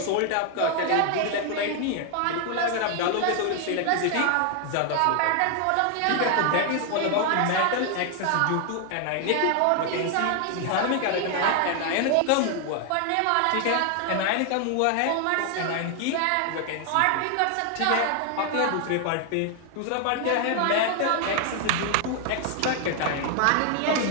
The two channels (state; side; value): different; both; correlation 0.00